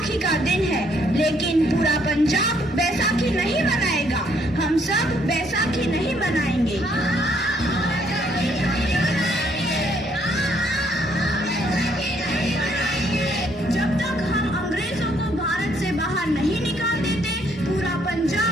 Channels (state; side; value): normal; both; correlation 0.68